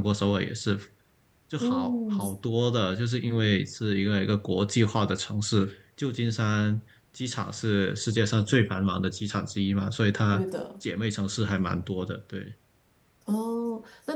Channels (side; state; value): both; identical; correlation 1.00